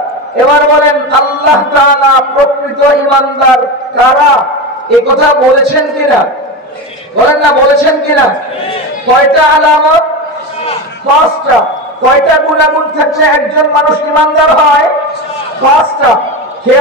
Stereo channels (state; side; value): normal; both; correlation 0.21